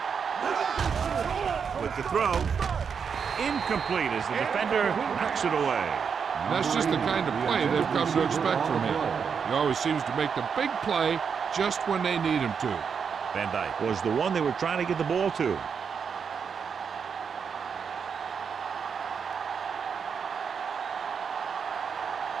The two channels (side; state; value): left; quieter; 6.5 dB